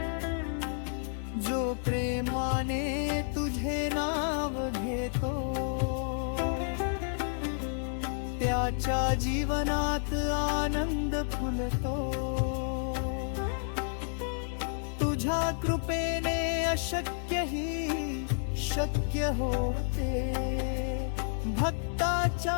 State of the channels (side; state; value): right; silent; 57 dB below the other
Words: जो प्रेमाने तुझे नाव घेतो त्याच्या जीवनात आनंद फुलतो तुझ्या कृपेने अशक्यही शक्य होते भक्ताच्या